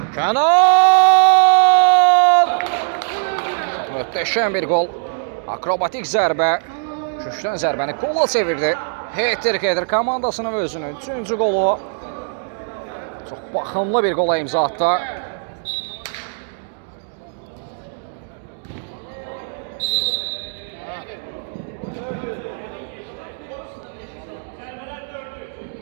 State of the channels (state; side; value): silent; left; digital silence